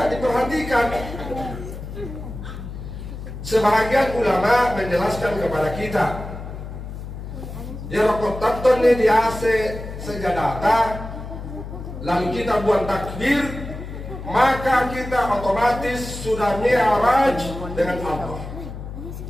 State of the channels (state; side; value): noise; left; hum, 10 dB below the sound